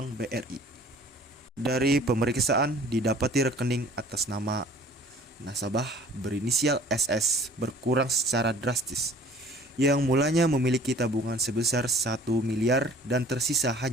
BRI. Dari pemeriksaan didapati rekening atas nama nasabah berinisial SS berkurang secara drastis, yang mulanya memiliki tabungan sebesar 1 miliar dan tersisa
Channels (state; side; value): normal; both; correlation 0.50